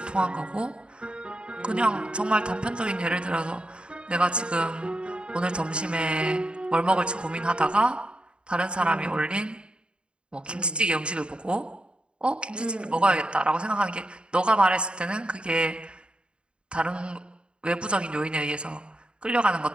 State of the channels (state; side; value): late; left; 0.054 ms